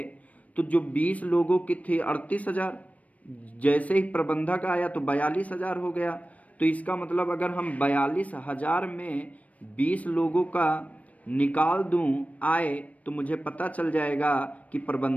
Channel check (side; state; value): right; late; 0.068 ms